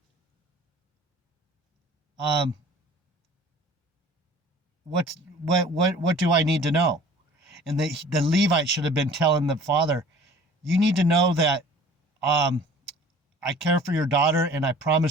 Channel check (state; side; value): normal; both; correlation 0.47